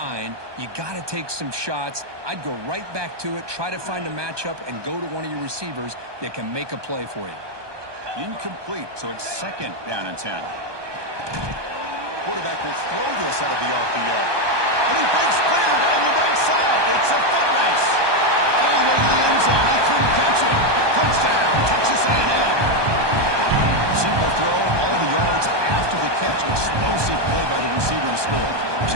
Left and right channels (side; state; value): left; late; 1.2 ms